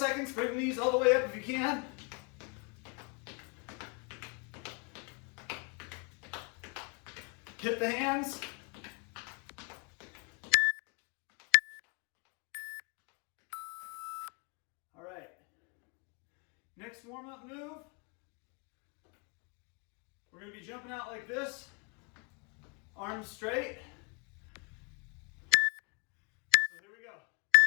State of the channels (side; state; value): right; quieter; 33.4 dB